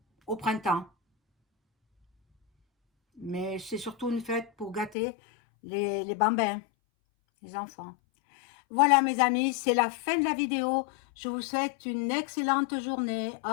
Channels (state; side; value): drops out; right; at 5.0 s